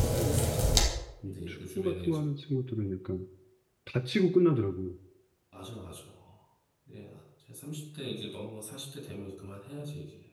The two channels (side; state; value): both; identical; correlation 1.00